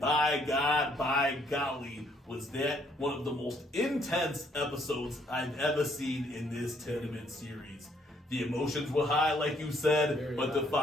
God, by golly, was that one of the most intense episodes I've ever seen in this tournament series. The emotions were high, like you said, Very but high. the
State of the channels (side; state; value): both; normal; correlation 0.68